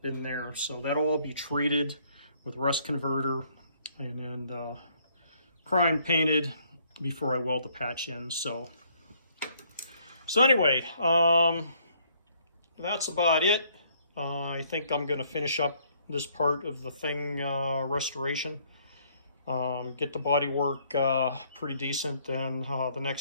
in there. So that'll all be treated with rust converter and then prime painted before I weld the patch in. So anyway, that's about it. I think I'm going to finish up this part of the thing restoration. Get the body work pretty decent. Then the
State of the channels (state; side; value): inverted; both; correlation -0.65